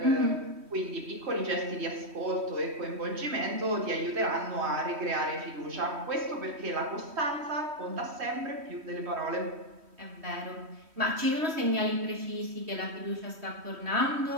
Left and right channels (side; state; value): left; late; 3.1 ms